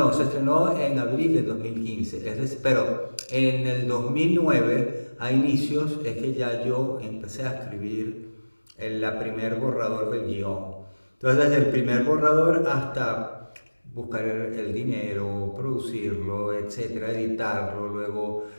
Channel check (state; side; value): inverted; both; correlation -1.00